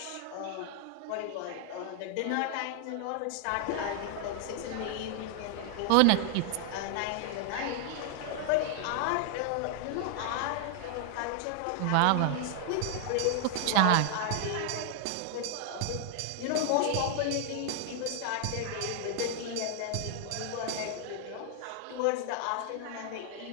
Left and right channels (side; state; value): both; different; correlation 0.00